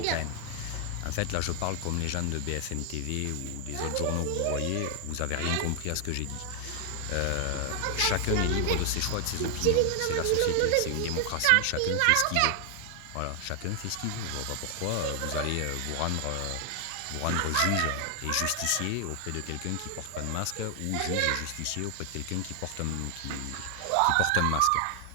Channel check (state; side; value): different; both; correlation 0.00